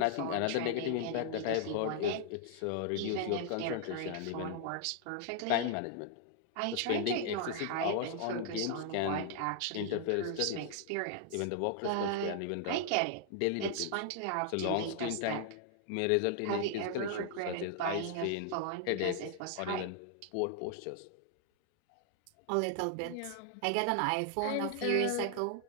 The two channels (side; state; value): both; different; correlation 0.00